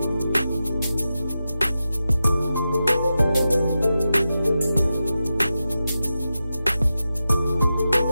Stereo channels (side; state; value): both; inverted; correlation -0.91